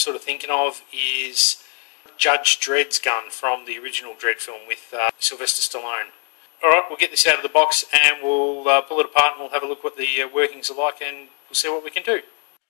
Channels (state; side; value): quieter; right; 39.5 dB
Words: of thinking of is Judge Dredd's gun from the original Dredd film with Sylvester Stallone. Alright, we'll get this out of the box and we'll pull it apart and we'll have a look what the workings are like and we'll see what we can do.